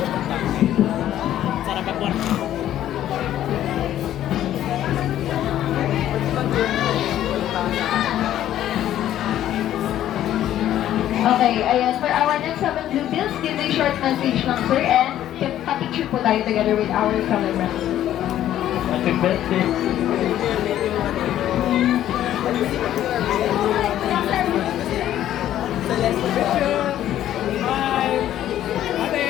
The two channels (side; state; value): right; quieter; 12.1 dB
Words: Sarap ako. Okay, ayan. For our next 7 blue bills, give a short message lang, sir, and pa-picture po tayo together with our celebrant. Happy birthday. Bye. Ate.